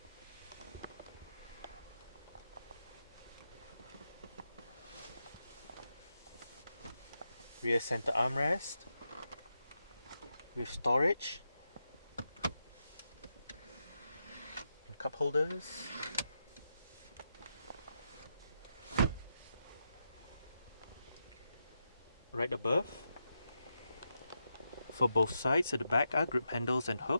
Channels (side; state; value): both; inverted; correlation -0.85